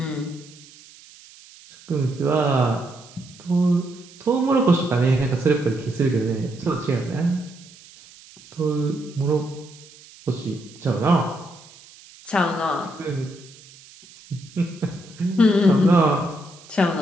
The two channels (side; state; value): right; noise; hiss, 22 dB below the sound